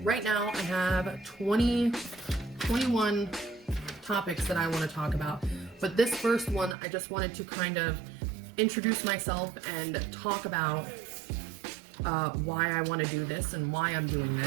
right now I have 21 topics that I want to talk about. But this first one, I just wanted to kind of introduce myself and talk about why I want to do this and why I'm doing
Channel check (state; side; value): drops out; left; at 6.8 s